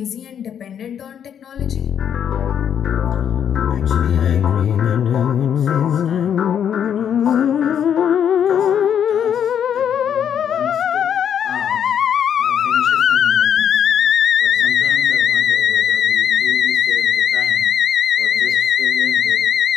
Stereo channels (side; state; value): right; quieter; 8.7 dB